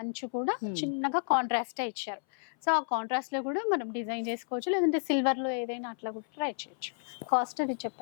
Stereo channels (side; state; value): right; silent; 57 dB below the other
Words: అంచు కూడా చిన్నగా కాంట్రాస్ట్ ఇచ్చారు. సో ఆ కాంట్రాస్ట్ లో కూడా మనం డిజైన్ చేసుకోవచ్చు, లేదంటే సిల్వర్ లో ఏదైనా అట్లా కూడా ట్రై చేయొచ్చు. కాస్ట్ అది